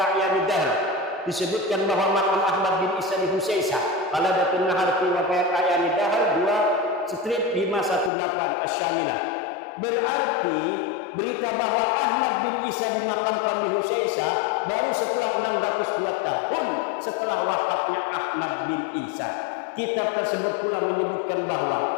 Dahr disebutkan bahwa makam Ahmad bin Isa di Husaisah. Qaladatun Nahar fi Wafayat A'yanid Dahr 2/518 Asy-Syamilah. Berarti berita bahwa Ahmad bin Isa dimakamkan di Husaisah baru setelah 602 tahun setelah wafatnya Ahmad bin Isa. Kitab tersebut pula menyebutkan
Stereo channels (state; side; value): drops out; right; at 8.1 s